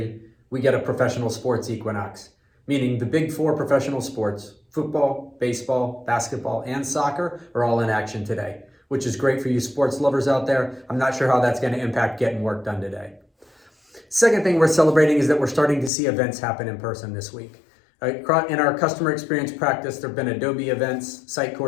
we get a professional sports equinox, meaning the big four professional sports, football, baseball, basketball, and soccer, are all in action today, which is great for you sports lovers out there. I'm not sure how that's going to impact getting work done today. Second thing we're celebrating is that we're starting to see events happen in person this week. In our customer experience practice, there have been Adobe events,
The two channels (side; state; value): right; drops out; at 15.9 s